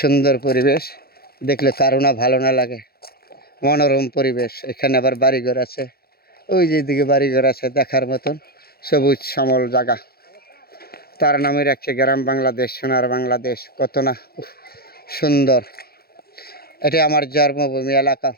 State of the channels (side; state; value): right; late; 0.45 ms